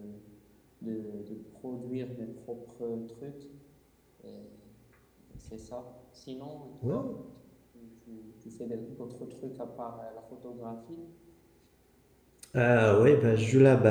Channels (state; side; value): identical; both; correlation 1.00